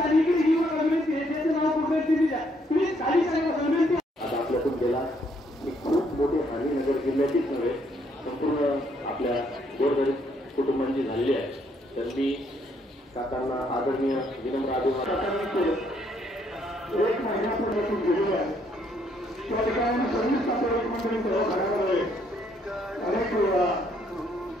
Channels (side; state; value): both; normal; correlation 0.70